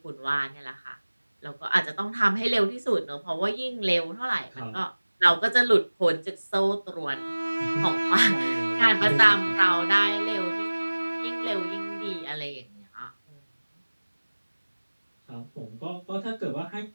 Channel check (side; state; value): both; inverted; correlation -1.00